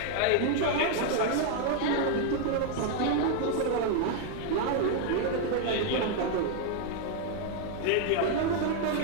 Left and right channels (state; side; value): different; both; correlation 0.00